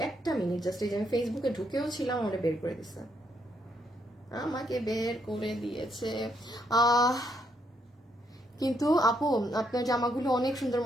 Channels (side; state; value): both; normal; correlation 0.75